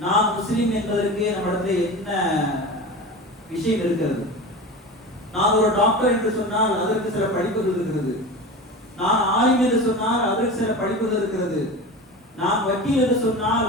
நான் முஸ்லிம் என்பதற்கு நம்மிடத்தில் என்ன விஷயம் இருக்கிறது? நான் ஒரு டாக்டர் என்று சொன்னால் அதற்கு சில படிப்புகள் இருக்கிறது. நான் ஆலிம் என்று சொன்னால் அதற்கு சில படிப்புகள் இருக்கிறது. நான் வக்கீல் என்று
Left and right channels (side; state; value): both; normal; correlation 0.30